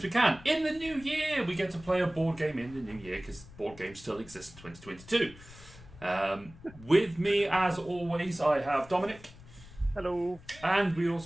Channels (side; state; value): left; noise; rumble, 20 dB below the sound